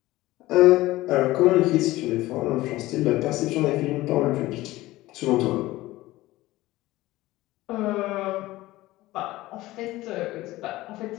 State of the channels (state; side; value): quieter; right; 17.8 dB